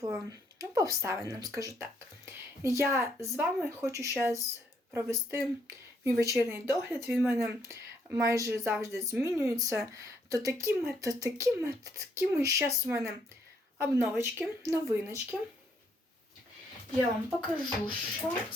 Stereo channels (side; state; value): both; normal; correlation 0.71